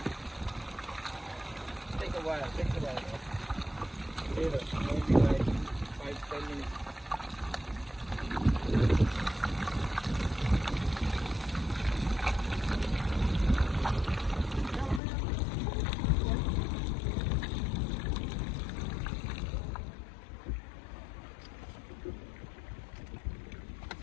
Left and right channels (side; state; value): right; drops out; at 15.0 s